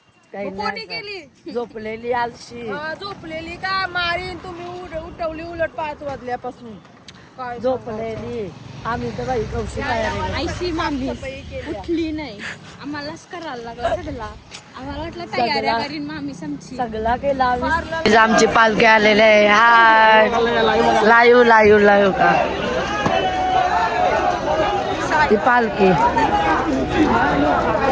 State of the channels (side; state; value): both; identical; correlation 1.00